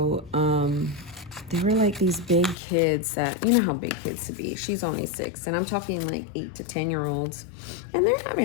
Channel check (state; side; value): drops out; right; at 2.6 s